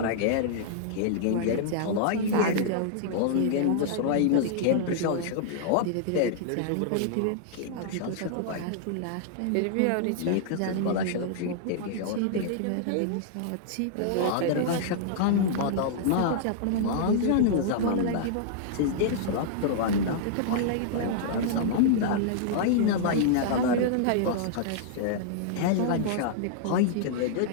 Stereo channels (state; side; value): different; both; correlation -0.01